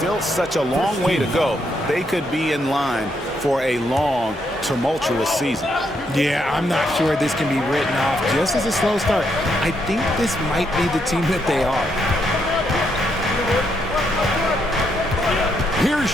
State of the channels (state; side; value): normal; both; correlation 0.77